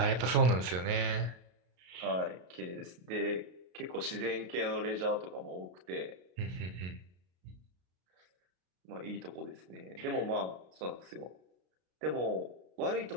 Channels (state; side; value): late; left; 33 ms